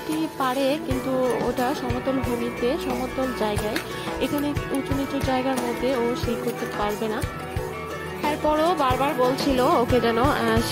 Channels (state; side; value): identical; both; correlation 1.00